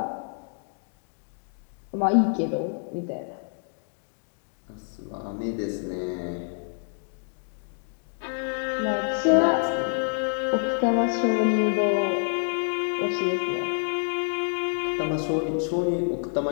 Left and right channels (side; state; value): right; silent; digital silence